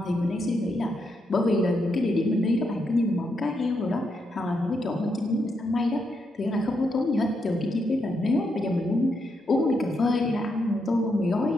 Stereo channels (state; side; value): normal; both; correlation 0.81